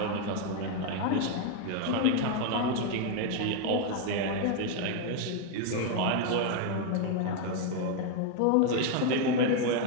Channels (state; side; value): different; both; correlation 0.01